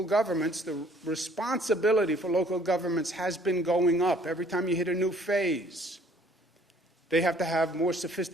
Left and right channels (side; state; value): both; normal; correlation 0.58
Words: governments, the responsibility for local governments has been going up. Every time you hit a new phase, they have to have more